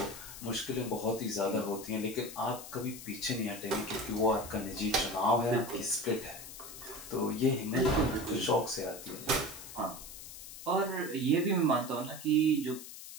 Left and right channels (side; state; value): left; noise; hiss, 13 dB below the sound